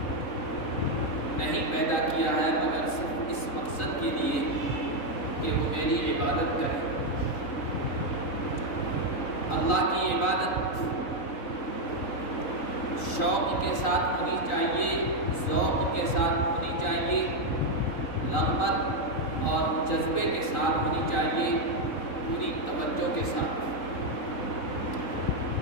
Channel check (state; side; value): late; right; 3.9 ms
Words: نہیں پیدا کیا ہے مگر صرف اس مقصد کے لیے کہ وہ میری عبادت کریں. اللہ کی عبادت شوق کے ساتھ ہونی چاہیے، ذوق کے ساتھ ہونی چاہیے، رغبت اور جذبے کے ساتھ ہونی چاہیے، پوری توجہ کے ساتھ.